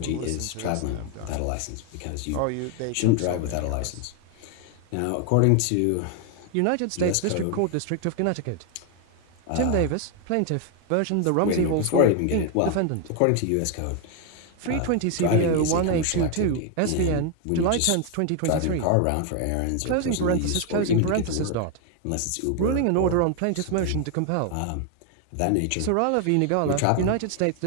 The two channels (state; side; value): different; both; correlation 0.01